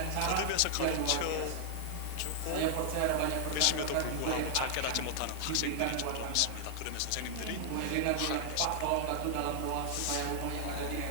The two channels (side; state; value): both; different; correlation 0.00